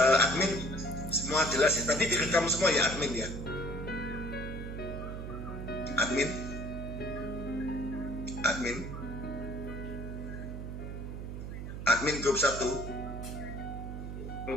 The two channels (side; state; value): right; noise; hum, 7 dB below the sound